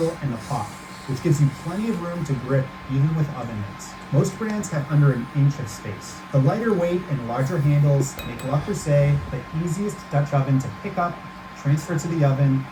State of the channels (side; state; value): both; identical; correlation 1.00